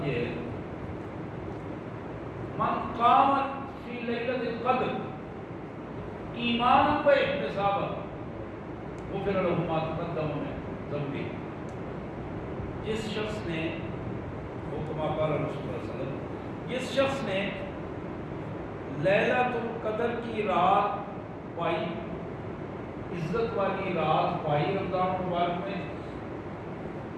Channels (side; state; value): both; identical; correlation 1.00